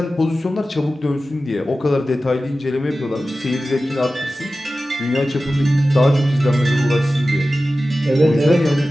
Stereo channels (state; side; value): normal; both; correlation 0.95